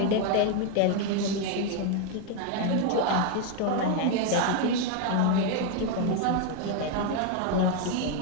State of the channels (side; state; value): both; different; correlation 0.01